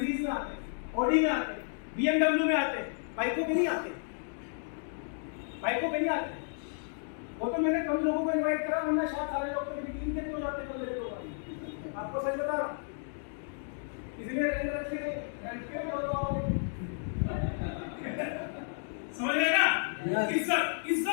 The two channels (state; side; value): silent; right; digital silence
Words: में आते हैं, ऑडी में आते हैं, BMW में आते हैं, बाइकों पे नहीं आते, बाइकों पे नहीं आते। वो तो मैंने कम लोगों को इनवाइट करा, वरना शायद सारे लोग तो मीटिंग के हो जाते हैं। मेरे लोग आपको सच बता रहा हूँ, इसलिए रेंट रखे रेंट पे समझ रहे ना? इज्जत